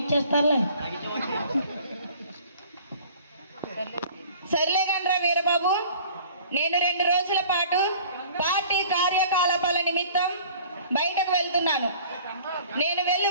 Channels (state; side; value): inverted; both; correlation -0.49